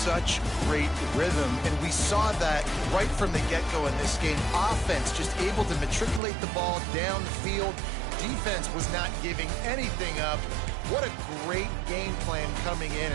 great rhythm, and we saw that right from the get-go in this game. Offense just able to matriculate the ball down the field. Defense was not giving anything up. What a great game plan coming in,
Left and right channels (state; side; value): drops out; left; at 6.2 s